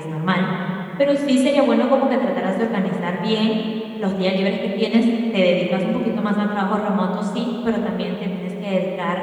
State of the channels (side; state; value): both; identical; correlation 1.00